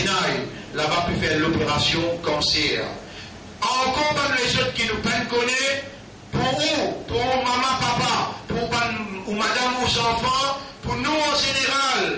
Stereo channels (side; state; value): both; identical; correlation 1.00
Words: Là-bas, peut faire l'opération cancer. Encore même les autres qui nous peuvent connaître, pour où, pour maman, papa, pour ou madame, ou enfants, pour nous en